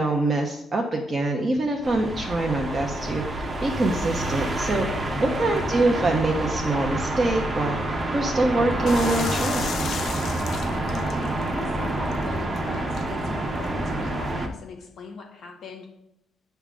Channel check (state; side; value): normal; both; correlation 0.81